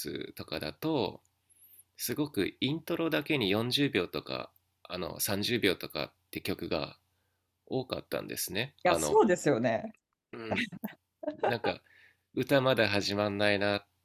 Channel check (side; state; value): both; identical; correlation 1.00